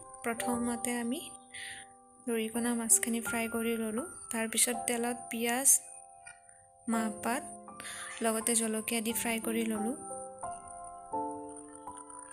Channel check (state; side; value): identical; both; correlation 1.00